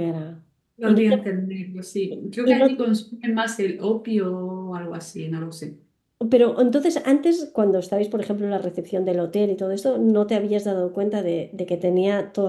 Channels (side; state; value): both; identical; correlation 1.00